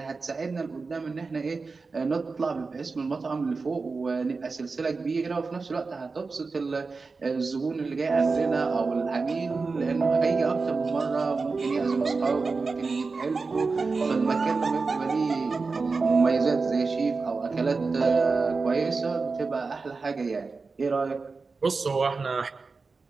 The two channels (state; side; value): quieter; left; 4.3 dB